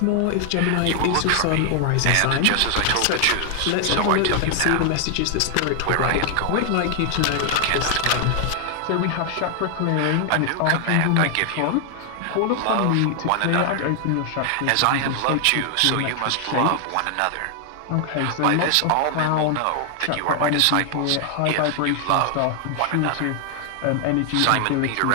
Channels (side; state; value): both; different; correlation 0.00